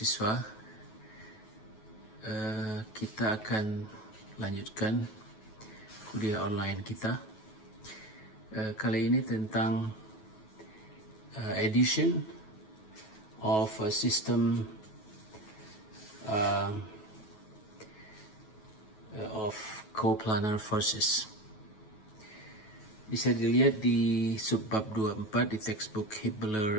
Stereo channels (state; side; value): late; right; 9.3 ms